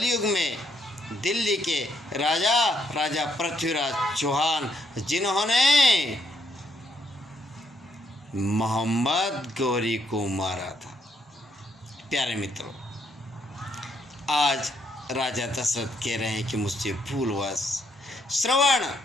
में दिल्ली के राजा पृथ्वीराज चौहान, जिन्होंने मोहम्मद गौरी को मारा था। प्यारे मित्रों, आज राजा दशरथ कह रहे हैं कि मुझसे भूलवश श्रवण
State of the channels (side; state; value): both; normal; correlation 0.74